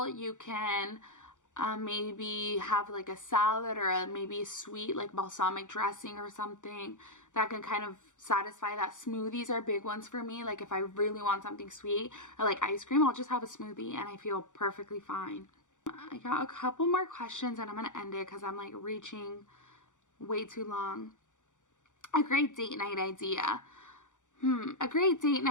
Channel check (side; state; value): right; late; 0.86 ms